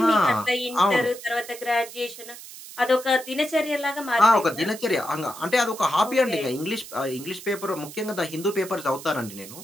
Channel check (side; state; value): right; noise; hiss, 15 dB below the sound